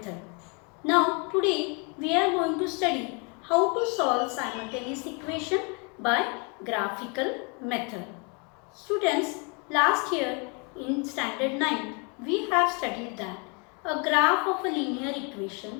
Now today we are going to study how to solve simultaneous equation by graphical method. Students, last year in standard 9 we have studied that a graph of a linear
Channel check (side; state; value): right; quieter; 33.9 dB